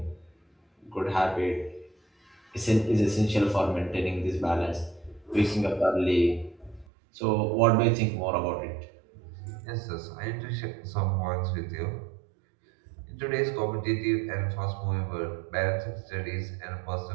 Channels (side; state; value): left; drops out; at 6.9 s